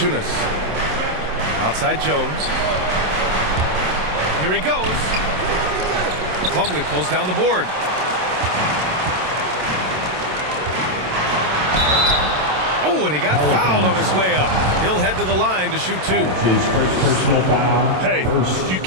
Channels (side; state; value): left; late; 27 ms